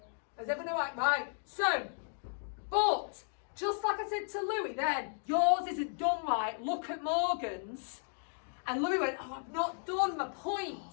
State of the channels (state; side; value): silent; right; digital silence